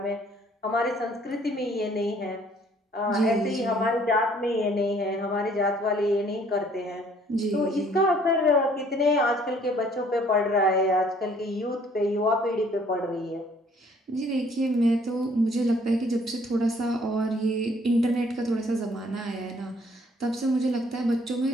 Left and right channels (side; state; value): both; normal; correlation 0.60